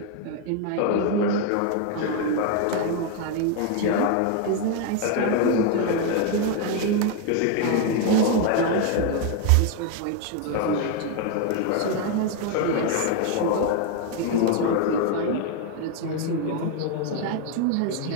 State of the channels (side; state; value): both; different; correlation 0.01